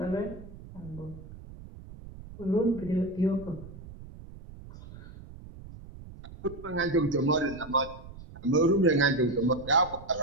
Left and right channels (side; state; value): right; noise; rumble, 16 dB below the sound